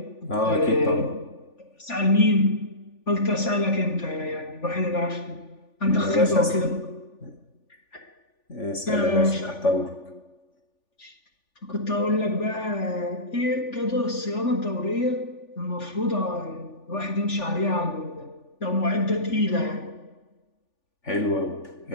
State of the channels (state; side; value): late; right; 3.4 ms